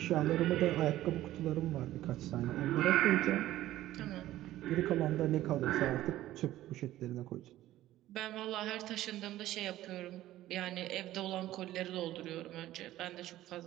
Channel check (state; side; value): quieter; left; 14.6 dB